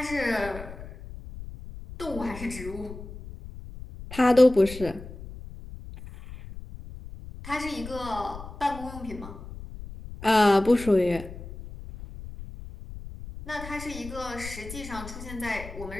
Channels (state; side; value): noise; left; rumble, 13 dB below the sound